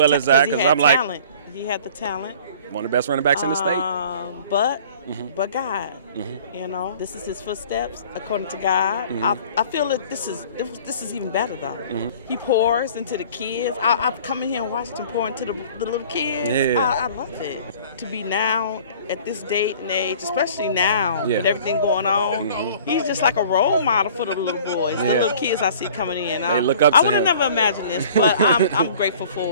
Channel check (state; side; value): inverted; both; correlation -0.49